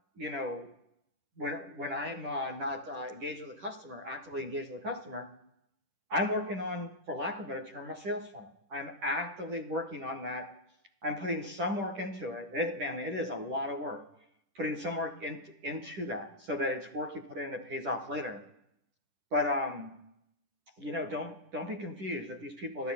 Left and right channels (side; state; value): left; late; 10 ms